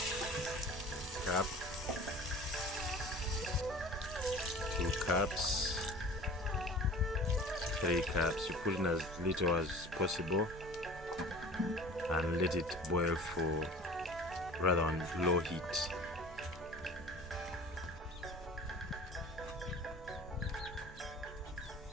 Cup, 2 cups, 3 cups. You put in as little as possible and let it boil for rather on low heat.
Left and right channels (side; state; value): both; normal; correlation 0.42